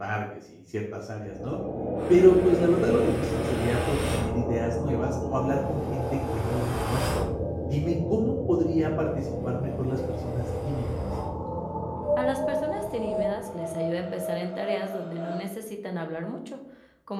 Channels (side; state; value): both; identical; correlation 1.00